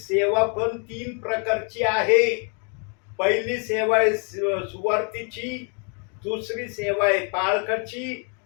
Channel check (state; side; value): quieter; right; 39.2 dB